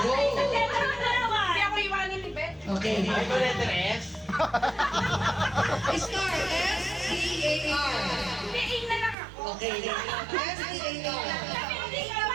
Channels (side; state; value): left; drops out; at 9.2 s